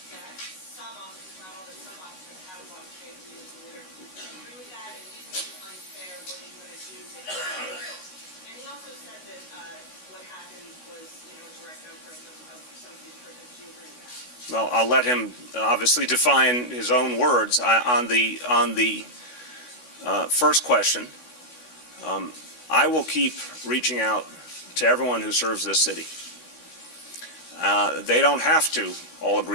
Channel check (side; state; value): right; late; 16 ms